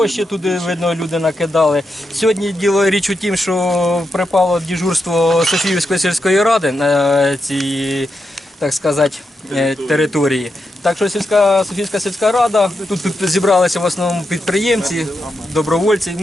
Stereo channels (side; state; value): both; normal; correlation 0.86